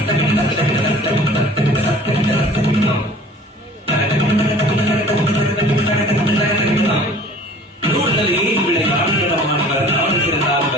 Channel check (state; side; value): normal; both; correlation 0.48